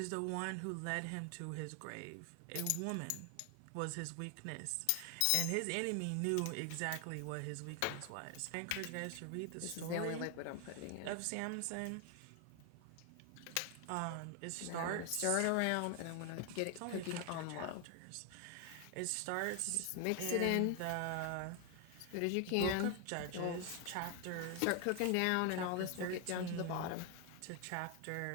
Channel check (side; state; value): both; different; correlation 0.00